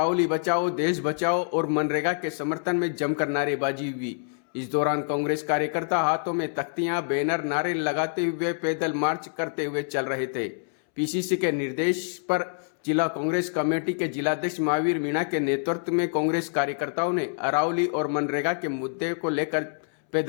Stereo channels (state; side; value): silent; right; 61 dB below the other